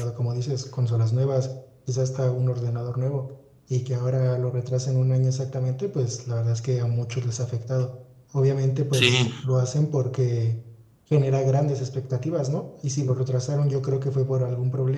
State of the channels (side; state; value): both; identical; correlation 1.00